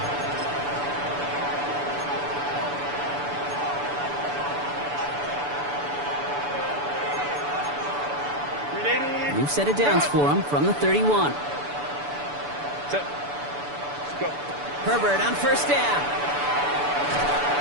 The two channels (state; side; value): late; left; 6.9 ms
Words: line. We've set it downs for him from the 31. Let's go. Herbert on 1st down.